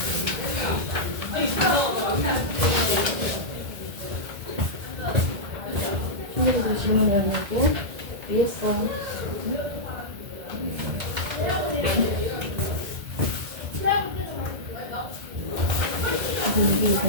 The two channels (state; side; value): late; left; 1.8 ms